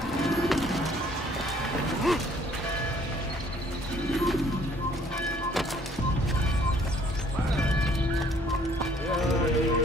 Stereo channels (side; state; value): both; normal; correlation 0.60